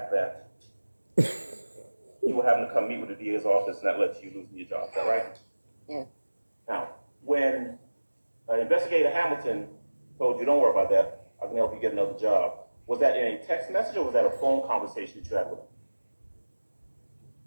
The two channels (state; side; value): inverted; both; correlation -1.00